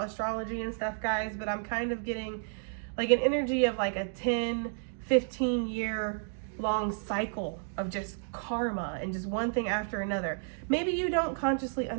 astrology and stuff, guys, but I'm kind of getting like an energy of like a 10, 15 year long cycle of just karma and just one thing after another. Maybe you don't consciously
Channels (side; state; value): left; silent; digital silence